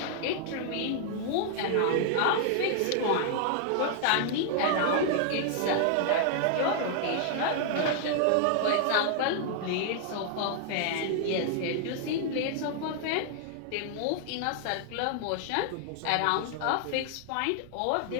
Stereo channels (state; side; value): different; both; correlation 0.00